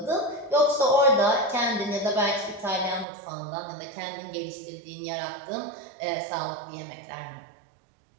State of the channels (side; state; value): left; drops out; at 3.1 s